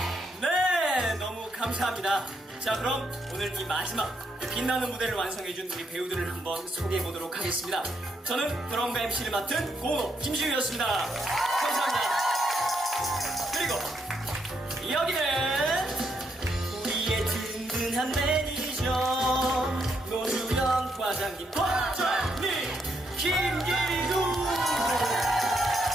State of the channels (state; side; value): normal; both; correlation 0.77